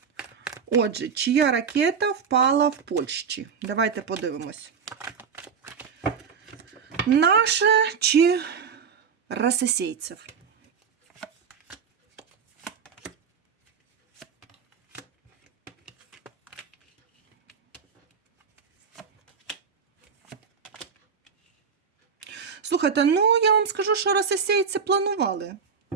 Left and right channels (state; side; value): quieter; left; 6.3 dB